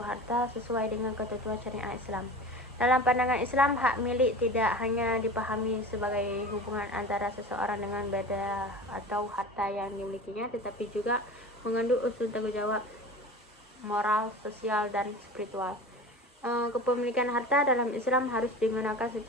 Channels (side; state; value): both; normal; correlation 0.34